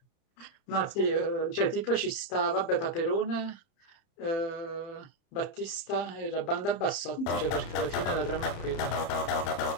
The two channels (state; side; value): late; right; 30 ms